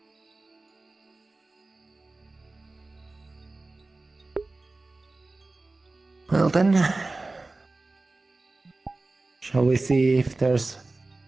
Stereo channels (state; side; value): quieter; left; 3.2 dB